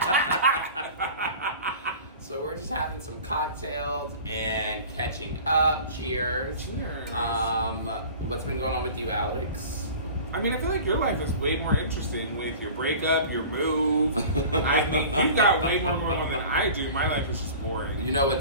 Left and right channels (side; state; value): both; inverted; correlation -0.40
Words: So we're just having some cocktails and catching up. Cheers. Cheers. What's been going on with you, Alex? I mean, I feel like your life is way more interesting with your breakup, your move. I mean, you've got way more going on than I do. My life is just boring. You know